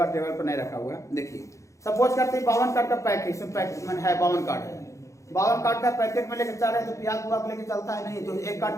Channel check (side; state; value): right; late; 0.15 ms